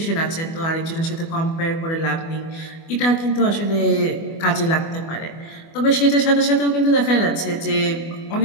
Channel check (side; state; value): right; late; 24 ms